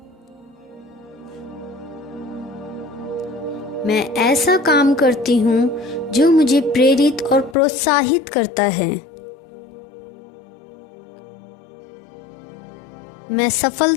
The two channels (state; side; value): drops out; right; at 7.6 s